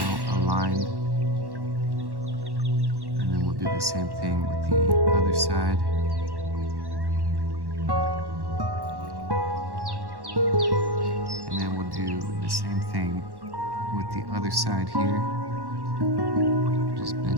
aligned. And then we'll do the same thing with the other side. And then we'll do the same thing with the other side here. Just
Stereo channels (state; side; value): late; left; 1.1 ms